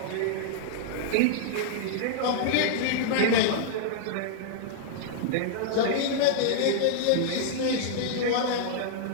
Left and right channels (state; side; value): different; both; correlation -0.01